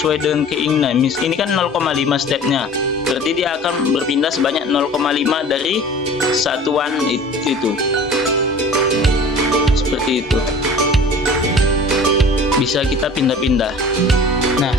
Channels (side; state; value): both; normal; correlation 0.43